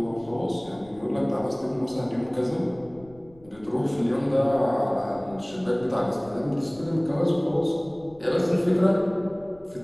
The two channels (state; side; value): noise; left; rumble, 25 dB below the sound